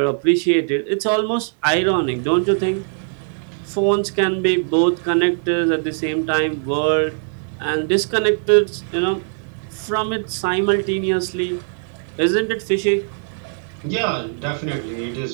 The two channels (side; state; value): left; silent; digital silence